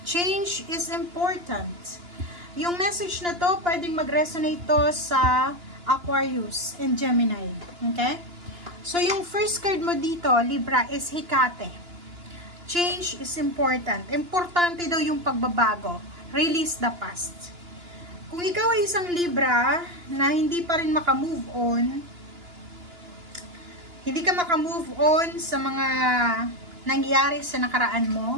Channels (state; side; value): late; left; 2.9 ms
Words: Change is important. Yung message na to, pwedeng mag-resonate to sa Aquarius and Gemini. Okay? So, yung first card mo dito, Libra, is Hecate. Change is important. Importante daw yung pagbabago. Release the past. Kung ikaw ay isang Libra na hindi pa rin makamove on, hindi ka makamove on sa mga nangyari sa nakaraan